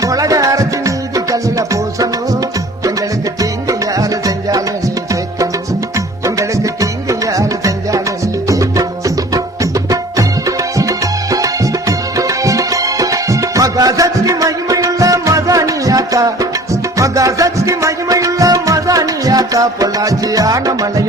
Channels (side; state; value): both; normal; correlation 0.47